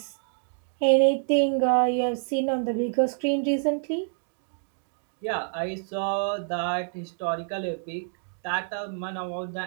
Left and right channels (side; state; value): left; silent; 60 dB below the other